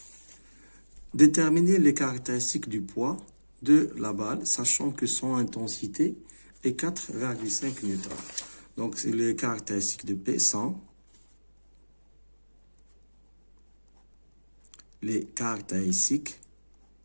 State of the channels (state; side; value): inverted; both; correlation -1.00